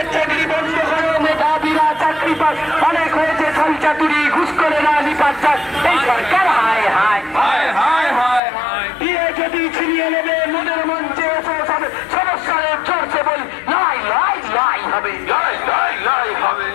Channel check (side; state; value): right; drops out; at 8.4 s